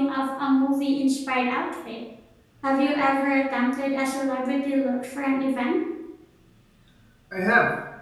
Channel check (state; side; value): identical; both; correlation 1.00